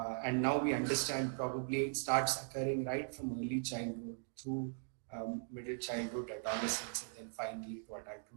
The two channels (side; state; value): left; silent; digital silence